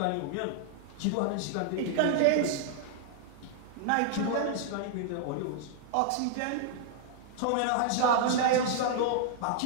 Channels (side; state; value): both; different; correlation -0.01